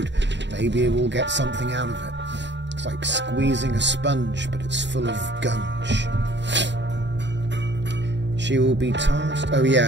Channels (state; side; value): late; left; 0.52 ms